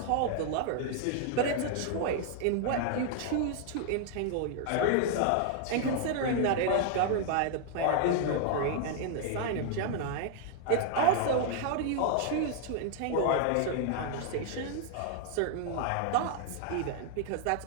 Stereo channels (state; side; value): different; both; correlation 0.00